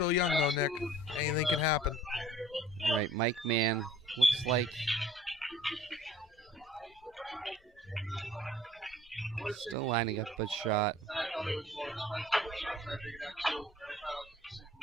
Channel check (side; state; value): both; normal; correlation 0.50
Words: young, though, Nick. Anything can happen. All right, Mike Mann looks like still lining up a shot.